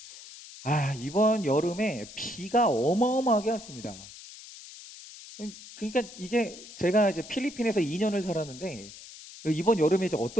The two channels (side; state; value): left; noise; hiss, 16 dB below the sound